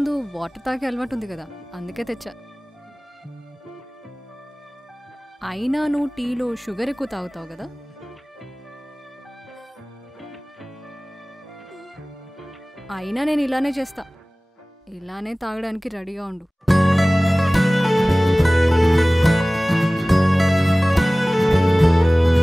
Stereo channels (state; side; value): normal; both; correlation 0.98